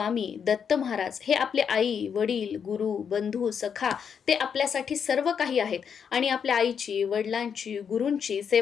दत्त महाराज हे आपले आई वडील गुरु बंधू सखा ते आपल्यासाठी सर्व काही आहेत आणि आपल्या आईची वडिलांची गुरूंची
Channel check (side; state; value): right; quieter; 7.2 dB